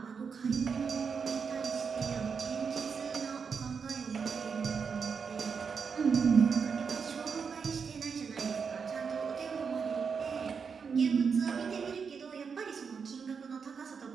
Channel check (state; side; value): quieter; left; 5.9 dB